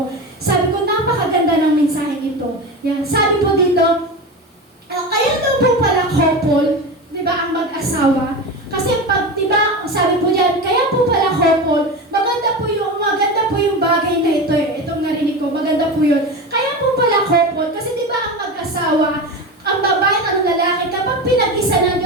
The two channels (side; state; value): both; normal; correlation 0.24